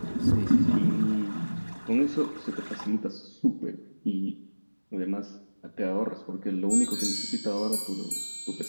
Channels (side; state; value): both; inverted; correlation -1.00